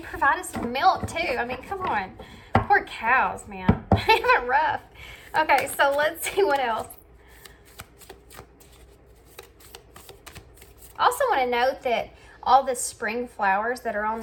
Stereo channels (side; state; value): both; identical; correlation 1.00